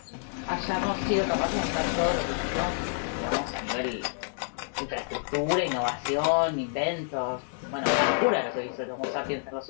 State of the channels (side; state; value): right; silent; 59 dB below the other